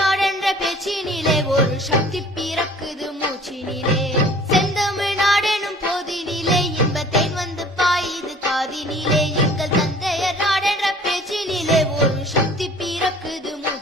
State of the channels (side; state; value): both; normal; correlation 0.50